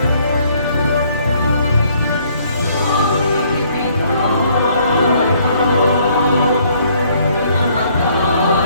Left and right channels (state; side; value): inverted; both; correlation -0.64